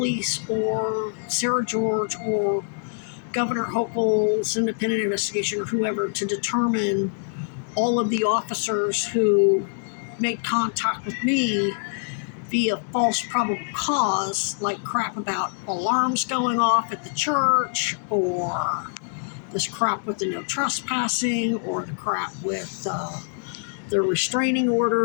or Sarah George or Governor Hochul's independent investigation or whoever to determine all of the officers who made contact with me via false probable cause, like crap about alarms going off at the church, or this crap with the no trespassing, or the crap with the restraining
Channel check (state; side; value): silent; right; digital silence